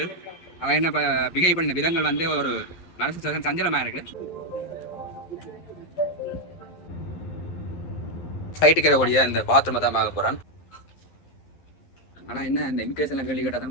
அவன் என்ன பிகை பண்ண விதங்கள் வந்து ஒரு மனசு சஞ்சலமா இருக்கு. சைட்டுக்கு இருக்கக்கூடிய இந்த பாத்ரூமை தான் பார்க்க போறான். ஆனால் என்ன இந்த இமிகிரேஷனில் கேள்வி கேட்டால்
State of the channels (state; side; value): late; right; 11 ms